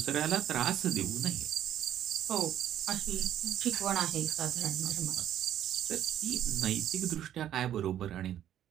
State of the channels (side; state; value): left; quieter; 11.2 dB